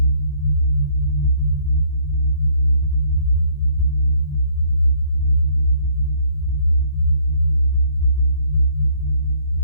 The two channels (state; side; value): late; right; 34 ms